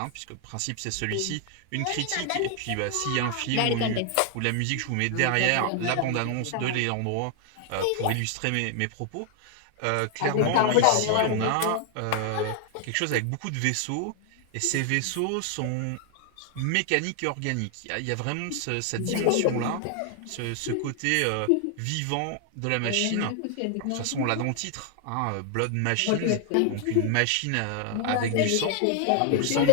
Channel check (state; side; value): different; both; correlation 0.00